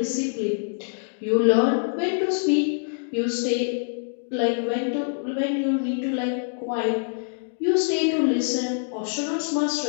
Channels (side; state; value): right; silent; digital silence